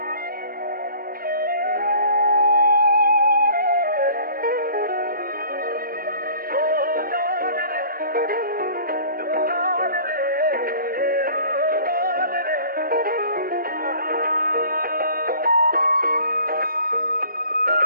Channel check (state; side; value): late; left; 0.43 ms